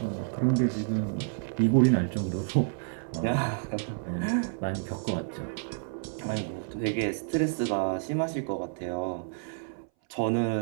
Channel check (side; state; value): left; silent; 58 dB below the other